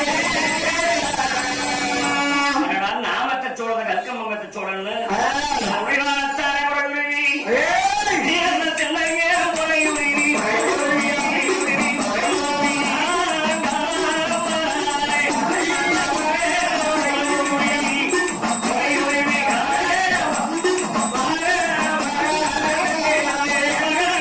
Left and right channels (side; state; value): both; identical; correlation 1.00